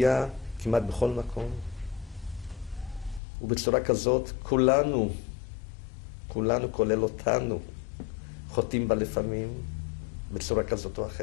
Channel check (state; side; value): drops out; right; at 3.2 s